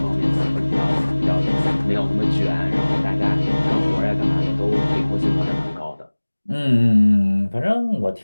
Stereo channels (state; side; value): inverted; both; correlation -1.00